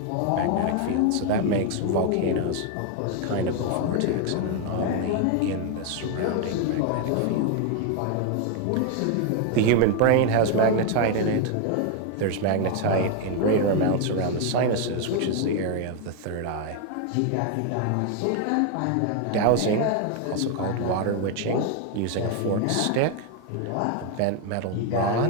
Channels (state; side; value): different; both; correlation 0.01